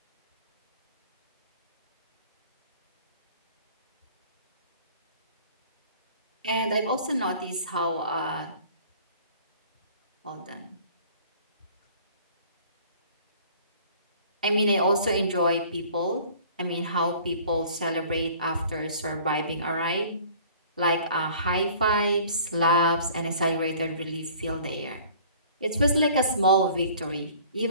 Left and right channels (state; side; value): inverted; both; correlation -0.50